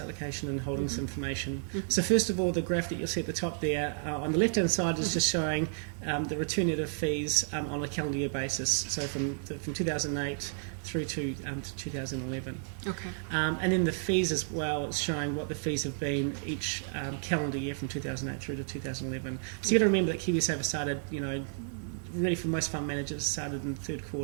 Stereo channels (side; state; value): left; silent; digital silence